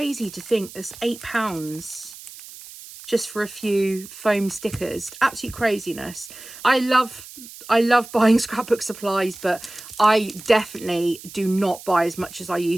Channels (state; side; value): noise; right; hiss, 16 dB below the sound